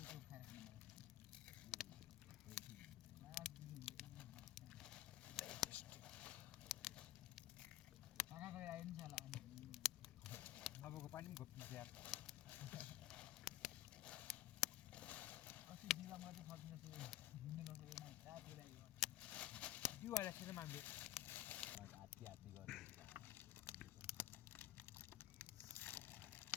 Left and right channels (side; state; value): right; quieter; 13.7 dB